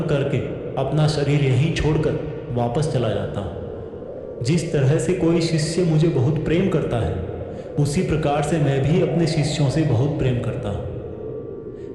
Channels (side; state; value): both; identical; correlation 1.00